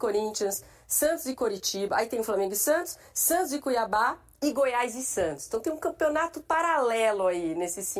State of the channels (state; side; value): identical; both; correlation 1.00